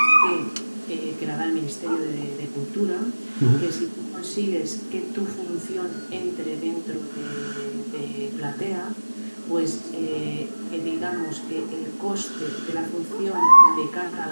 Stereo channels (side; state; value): both; inverted; correlation -1.00